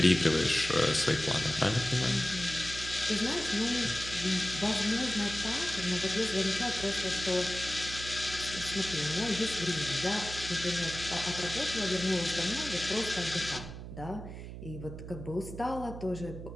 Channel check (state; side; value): noise; right; hum, 10 dB below the sound